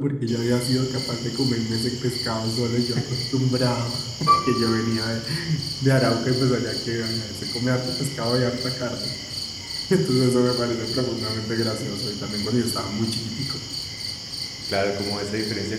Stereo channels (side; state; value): both; identical; correlation 1.00